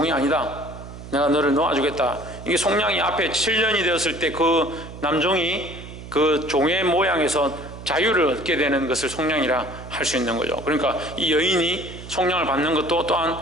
아니다, 내가 너를 놓아주겠다. 이게 속량이 앞에 7년이 되었을 때 그 남종이 그 종의 모양에서 자유를 얻게 되는 것을 속량이라 할 수 있는 거죠. 그러니까 이 여인이 속량을 받는 것도 또한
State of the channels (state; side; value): noise; right; hum, 13 dB below the sound